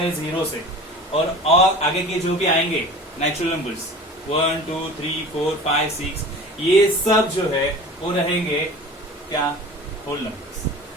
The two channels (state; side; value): normal; both; correlation 0.38